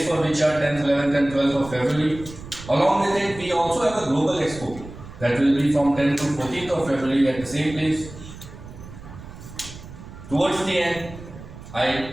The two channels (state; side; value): noise; right; rumble, 15 dB below the sound